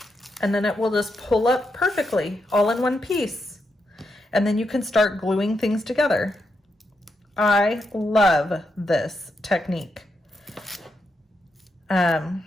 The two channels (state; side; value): normal; both; correlation 0.83